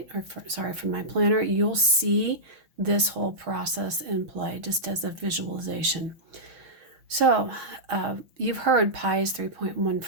from my planner, you'll see this whole process in play just as a visualization. So you've heard pi is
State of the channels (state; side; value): late; left; 6.3 ms